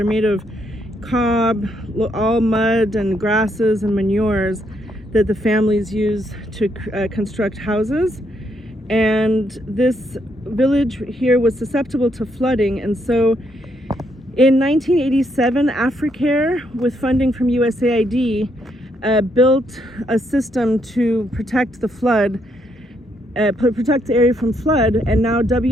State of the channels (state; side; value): normal; both; correlation 0.75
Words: made of cob, all mud and grasses and manures that the families use to construct houses. And this village here was susceptible to flooding. And so in 1987, Africare, with funding from USAID, built a system to protect the flood, protect the area from flood, and now